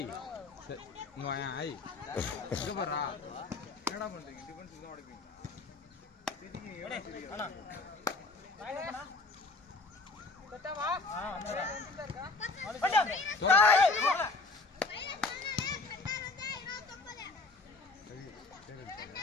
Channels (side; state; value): right; quieter; 3.6 dB